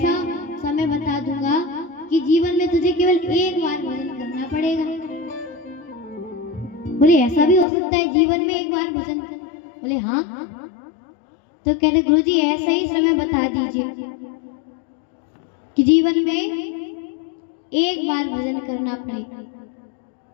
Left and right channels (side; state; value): right; drops out; at 7.7 s